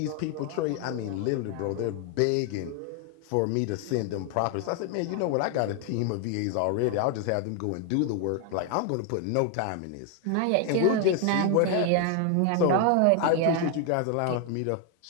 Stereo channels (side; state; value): both; different; correlation 0.00